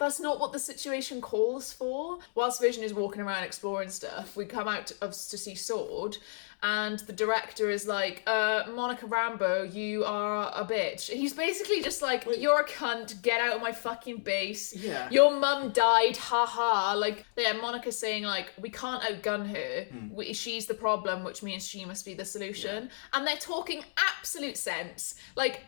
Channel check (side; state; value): right; silent; digital silence